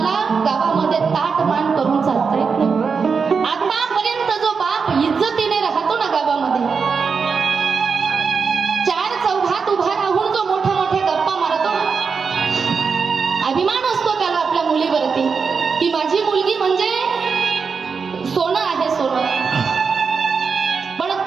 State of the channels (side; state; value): left; quieter; 5.4 dB